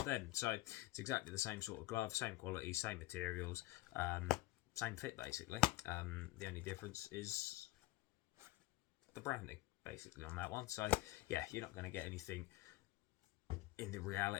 them. So it's exactly the same sort of glove, same quality, same materials, same fit basically. The only difference is the branding basically on that one. So yeah, you're not going to get anything in the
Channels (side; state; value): right; quieter; 18.3 dB